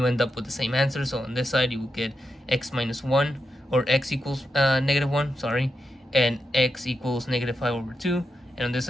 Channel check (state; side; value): normal; both; correlation 0.86